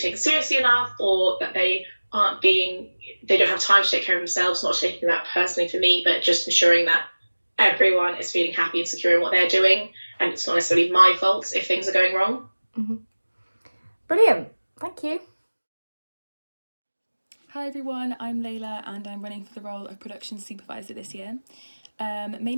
seriously enough, or that they don't have time to take care of themselves, not taking that personally for me, but just ensuring that everyone is feeling happy and secure in what they're doing, and it's not necessarily my fault if things are going wrong. Mm-hmm. Brilliant, thank you. Hi everyone, I'm Layla and I'm running for the role of production supervisor this year.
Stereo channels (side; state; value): both; inverted; correlation -1.00